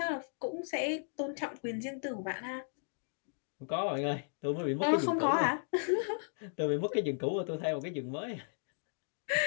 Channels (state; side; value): silent; right; digital silence